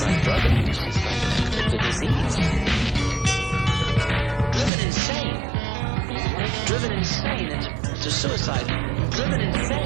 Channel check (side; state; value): left; drops out; at 4.7 s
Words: like drug abuse. It's like a disease. Driven insane into suicide. Driven